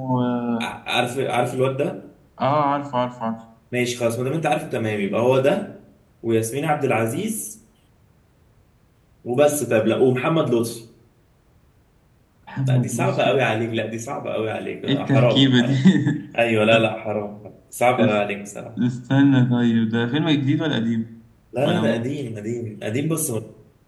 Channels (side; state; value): both; identical; correlation 1.00